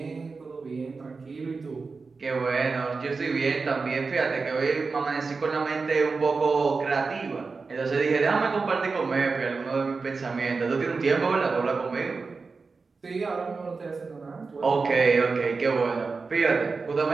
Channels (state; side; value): quieter; left; 4.4 dB